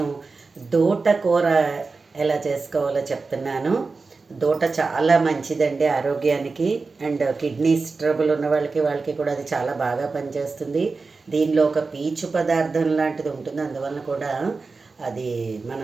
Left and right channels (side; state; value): left; quieter; 4.1 dB